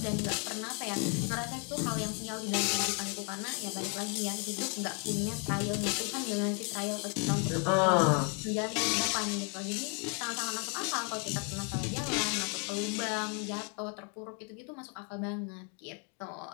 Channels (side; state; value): right; quieter; 37.0 dB